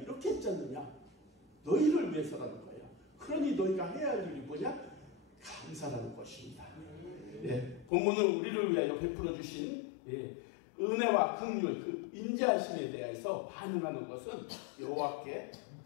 했지 않느냐? 너희를 위해서라는 거예요. 그러니 너희가 해야 할 일이 뭐냐? 감사라는 것입니다. 본문은 우리를 위하여 베풀어 주신 은혜와 긍휼, 그 인자하심에 대해서 반응하는 것은 여호와께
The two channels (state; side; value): drops out; right; at 7.9 s